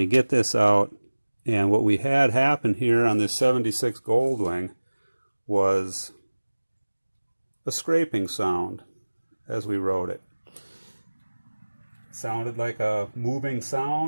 get this out. And what we had happen here on this 76 Goldwing was a scraping sound as we rode it. It sounded like a moving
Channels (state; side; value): inverted; both; correlation -1.00